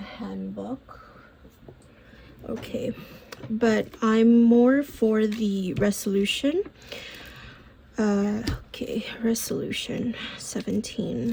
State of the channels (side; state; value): both; identical; correlation 1.00